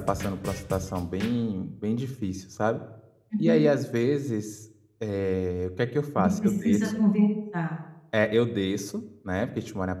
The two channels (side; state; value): both; identical; correlation 1.00